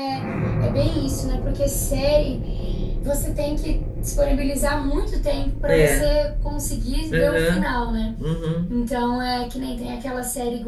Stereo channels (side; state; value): both; identical; correlation 1.00